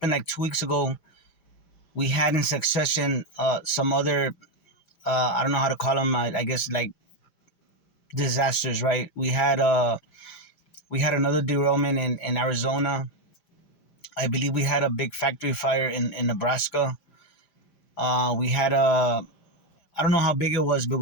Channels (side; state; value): right; late; 5.0 ms